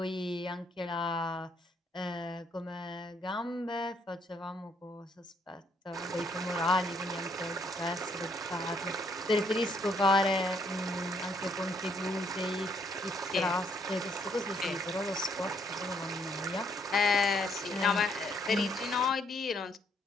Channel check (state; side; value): normal; both; correlation 0.69